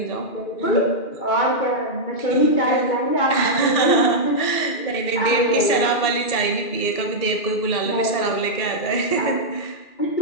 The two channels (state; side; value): late; right; 2.4 ms